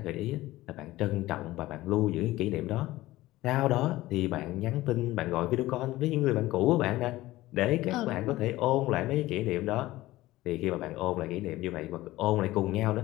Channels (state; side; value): quieter; right; 17.3 dB